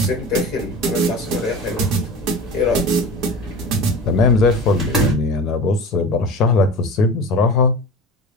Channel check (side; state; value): both; normal; correlation 0.33